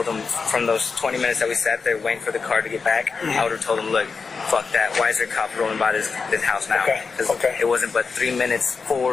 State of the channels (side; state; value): right; quieter; 4.9 dB